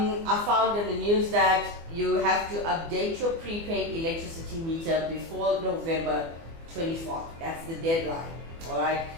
found in the news that you have to update your prepaid electricity meter before November 24th. That's the deadline. Alright.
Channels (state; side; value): late; left; 24 ms